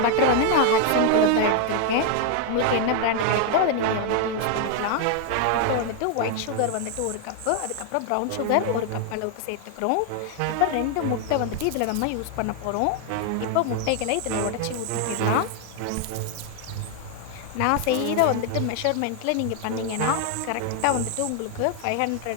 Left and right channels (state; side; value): different; both; correlation 0.00